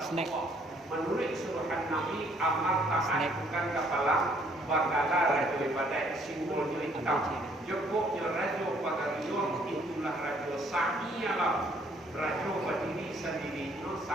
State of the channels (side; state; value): both; normal; correlation 0.64